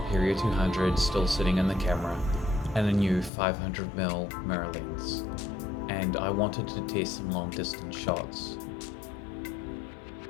200 still sitting in the camera and a new 500mm mirror lens, and I wanted to test some long distance shots.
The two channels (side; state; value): right; drops out; at 3.3 s